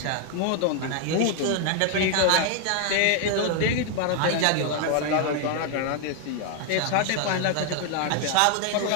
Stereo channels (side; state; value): both; different; correlation 0.00